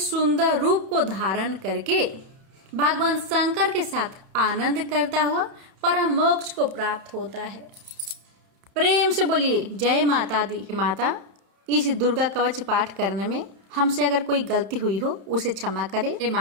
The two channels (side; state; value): left; late; 30 ms